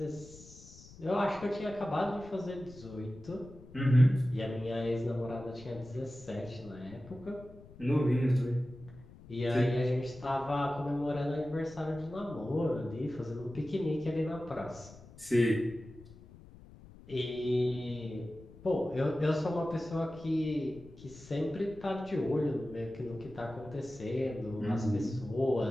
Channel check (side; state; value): left; noise; rumble, 20 dB below the sound